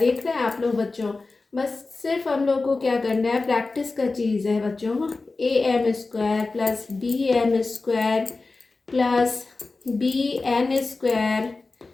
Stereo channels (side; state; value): right; quieter; 3.7 dB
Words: रहे हैं आप लोग बच्चों? बस सिर्फ हम लोग को क्या करना है, प्रैक्टिस का चीज़ है बच्चों। am² plus bm² plus bn²